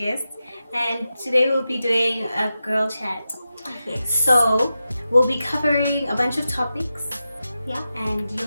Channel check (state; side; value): inverted; both; correlation -0.91